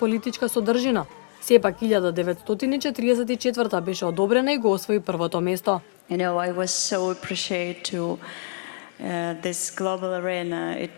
содржина. Сепак 1944 беше одобрена и го освои првото место. I was so appreciated to this global arena.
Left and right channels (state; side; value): silent; right; digital silence